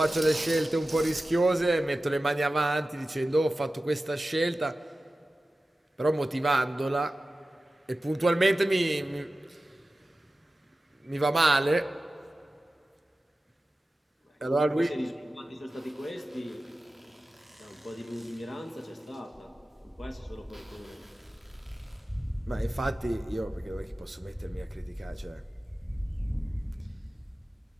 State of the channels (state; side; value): normal; both; correlation 0.95